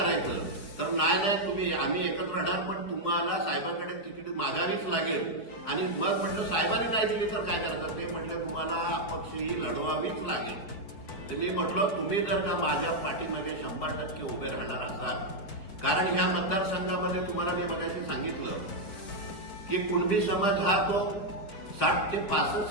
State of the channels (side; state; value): right; late; 4.8 ms